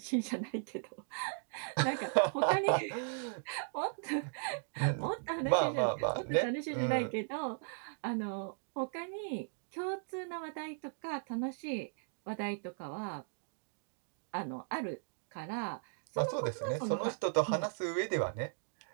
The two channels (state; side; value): silent; left; digital silence